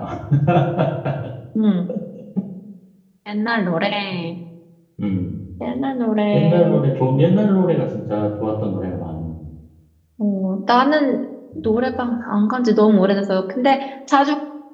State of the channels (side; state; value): both; identical; correlation 1.00